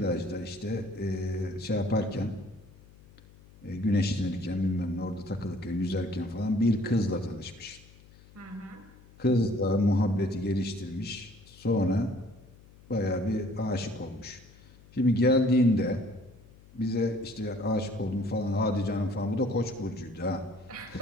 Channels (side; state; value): left; noise; hum, 24 dB below the sound